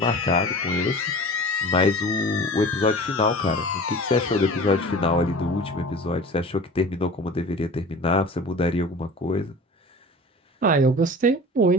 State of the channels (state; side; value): normal; both; correlation 0.39